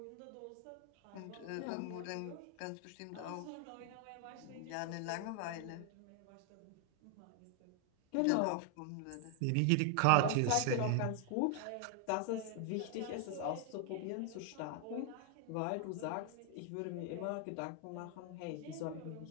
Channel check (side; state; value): both; different; correlation 0.00